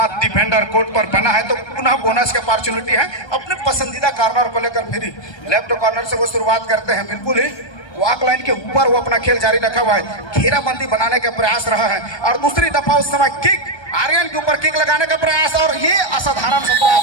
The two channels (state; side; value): late; right; 1.3 ms